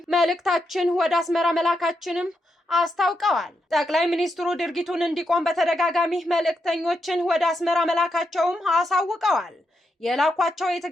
መልእክታችን ወደ አስመራ መላካችንም አስታውቀዋል። ጠቅላይ ሚኒስትሩ ድርጊቱን እንዲቆም በተደጋጋሚ መልእክተኞችን ወደ አስመራ መላካቸውም አሳውቀዋል። የላኳቸው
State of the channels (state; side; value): normal; both; correlation 0.83